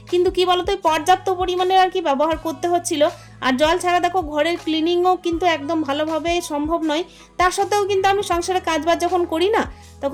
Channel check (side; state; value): both; identical; correlation 1.00